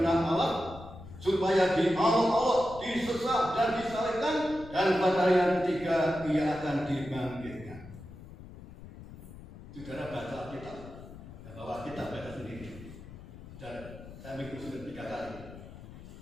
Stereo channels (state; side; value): noise; left; rumble, 15 dB below the sound